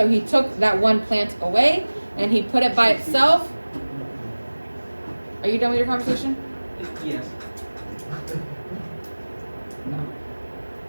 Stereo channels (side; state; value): both; inverted; correlation -1.00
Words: he took that one plant away and he put it by itself. Are you done with your conversation? Yes. No.